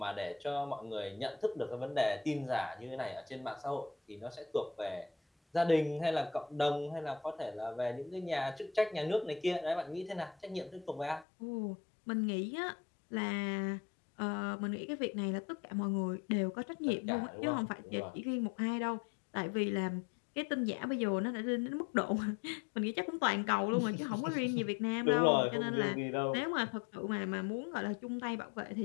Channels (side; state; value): right; drops out; at 11.2 s